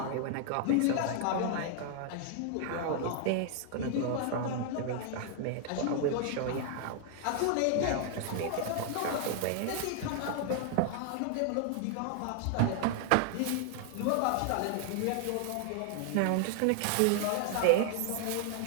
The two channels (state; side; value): different; both; correlation 0.00